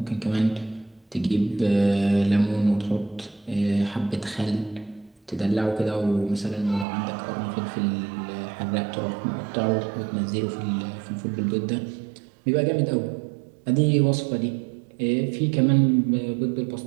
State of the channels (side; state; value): left; drops out; at 6.9 s